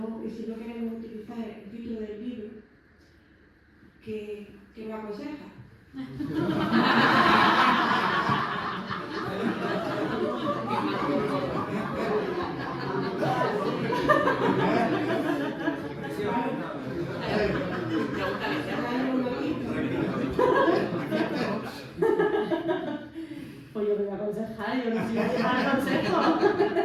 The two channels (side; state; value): both; identical; correlation 1.00